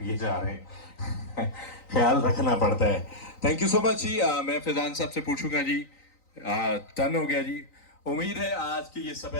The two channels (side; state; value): right; late; 3.9 ms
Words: जा रहे हैं। ख्याल रखना पड़ता है। थैंक यू सो मच जी। मैं फैजान साहब से पूछूंगा जी, टर्न हो गया जी। उम्मीद है आज की ये